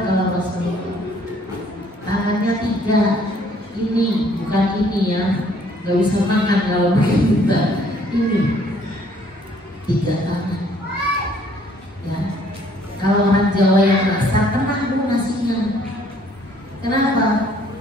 Kalau Rasulullah tangannya 3, ini bukan ini ya, nggak bisa makan kalau begitu. Ini 3 tangan ya. Kalau orang Jawa yang masak tenang Bu nasinya. Kenapa?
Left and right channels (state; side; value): normal; both; correlation 0.62